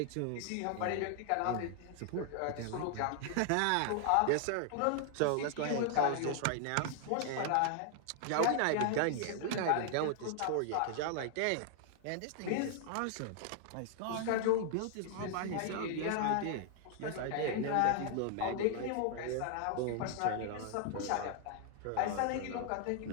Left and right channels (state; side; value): different; both; correlation 0.00